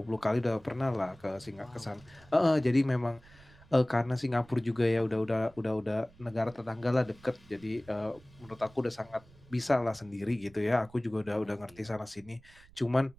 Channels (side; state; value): right; noise; rumble, 25 dB below the sound